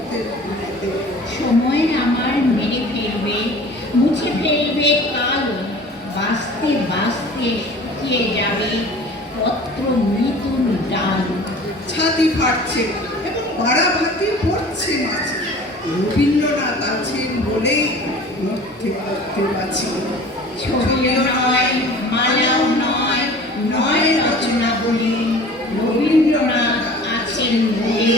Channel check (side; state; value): both; normal; correlation 0.43